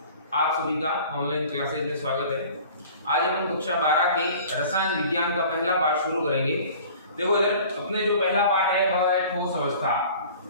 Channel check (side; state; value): both; inverted; correlation -0.46